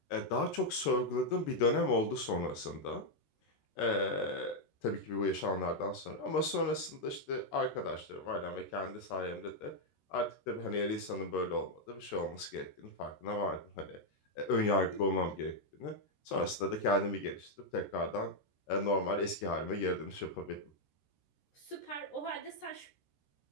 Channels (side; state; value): right; late; 13 ms